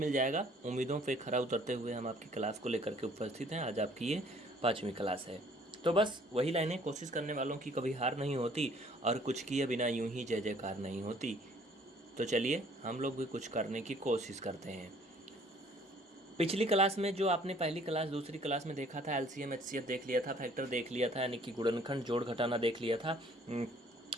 जाएगा। उम्मीदों पे खरा उतरते हुए हम आपकी क्लास को लेकर के उपस्थित हैं। आज आपकी ये 5वीं क्लास है। तो बस वही लाइनें, कोशिश करने वालों की कभी हार नहीं होती और कुछ किए बिना यूं ही जय जयकार नहीं होती। तो चलिए हम लोग भी कुछ करने की कोशिश करते हैं। पिछली क्लास में जो आपने पहली क्लास दूसरी क्लास में देखा था, एलसीएम एचसीएफ देख लिया था, फैक्टर देख लिया था, यानी कि गुणनखंड जोड़ घटाना देख लिया था।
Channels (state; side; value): normal; both; correlation 0.58